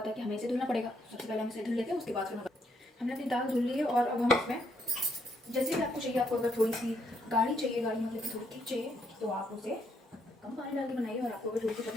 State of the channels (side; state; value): both; normal; correlation 0.74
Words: है कि हमें इसे धुलना पड़ेगा। सबसे पहले हम इसे धुल लेते हैं, उसके बाद फिर हमने अपनी दाल धुल ली है। और अब हम इसमें जैसे भी आपको चाहिए, आपको अगर थोड़ी सी गाढ़ी चाहिए, गाढ़ी मतलब कि थोड़ी थिक चाहिए, तो आप उसे कम पानी डाल के बनाइए। और आपको अगर थोड़ी सी